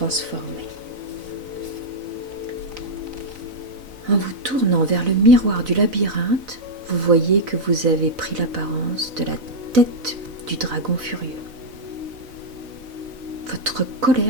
En vous tournant vers le miroir du labyrinthe, vous voyez que vous avez pris l'apparence de la tête du dragon furieux. Votre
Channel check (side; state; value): left; late; 4.0 ms